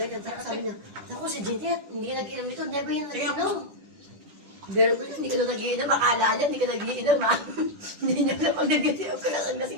Tapos sabi niya, naku, si Jeanette, hindi ka nag-inom ito, never yan nag-inom. Pero kung hindi ka doon nag-iinom, akala niya, hindi ka nag-iinom, ha? Hindi niya alam pag nag-iinom ko lang,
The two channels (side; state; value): left; late; 10 ms